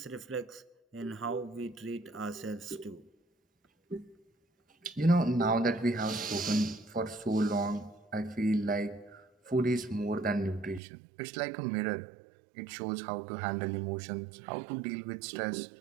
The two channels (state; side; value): drops out; left; at 10.8 s